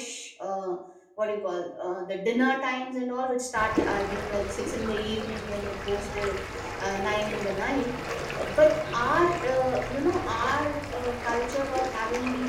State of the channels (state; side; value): identical; both; correlation 1.00